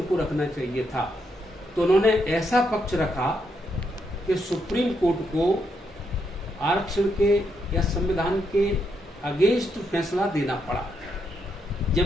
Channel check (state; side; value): normal; both; correlation 0.79